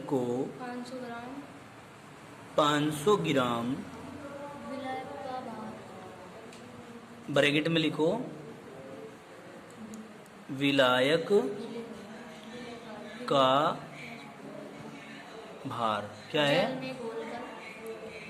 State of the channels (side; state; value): both; identical; correlation 1.00